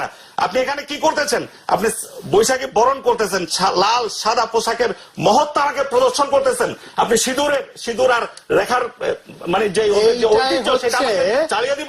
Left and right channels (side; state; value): both; identical; correlation 1.00